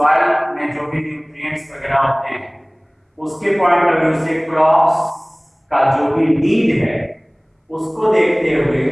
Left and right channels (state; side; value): identical; both; correlation 1.00